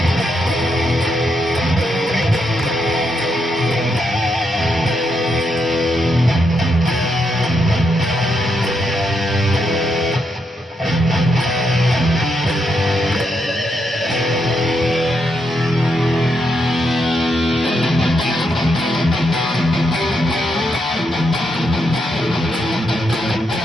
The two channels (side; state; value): both; normal; correlation 0.80